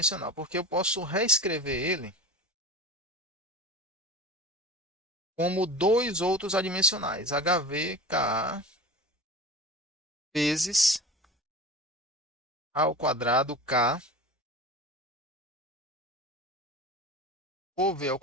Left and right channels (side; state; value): both; normal; correlation 0.33